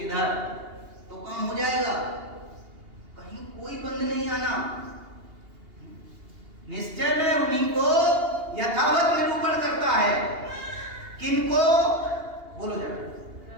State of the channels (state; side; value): late; left; 2.8 ms